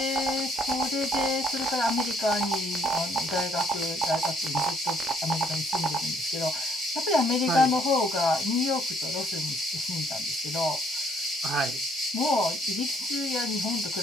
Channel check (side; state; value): both; normal; correlation 0.65